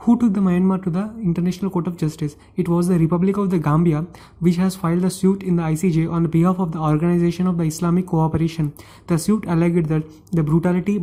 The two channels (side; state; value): both; identical; correlation 1.00